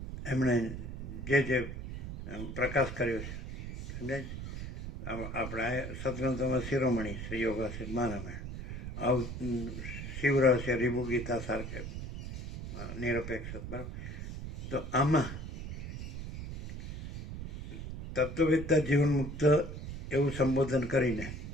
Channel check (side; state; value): right; noise; rumble, 7 dB below the sound